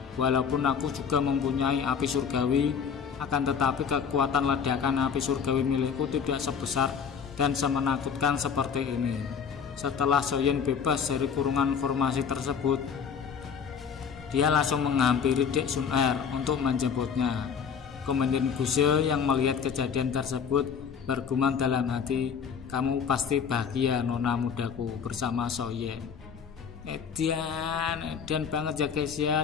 walaupun aku juga mempunyai api surgawi, akan tetapi kekuatan ledakan api surgawi milikku tidak sebesar dan semenakutkan seperti ini. Setelah Soyen bebas dari kurungan formasi tersebut, dia langsung menghampiri Dek Sun Er untuk menjemputnya. Komandan Guse yang melihat kejadian tersebut bergumam dalam hati, kamu pasti bahagia nona mudaku bersama Soyen. Edan banget ya guys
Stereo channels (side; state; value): right; quieter; 6.9 dB